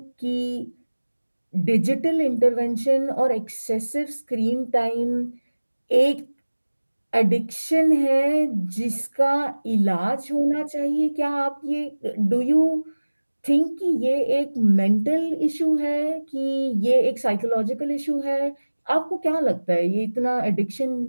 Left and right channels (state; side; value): inverted; both; correlation -1.00